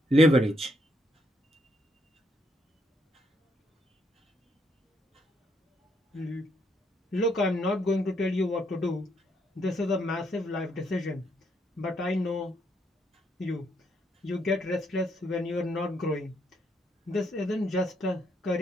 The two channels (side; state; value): both; normal; correlation 0.74